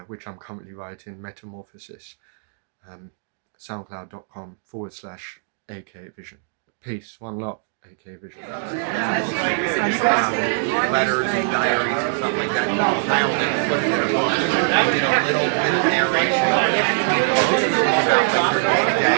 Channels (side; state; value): left; silent; digital silence